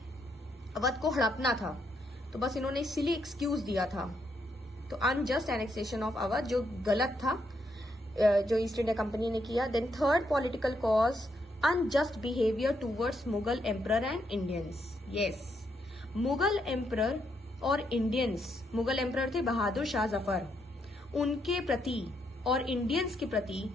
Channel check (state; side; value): normal; both; correlation 0.77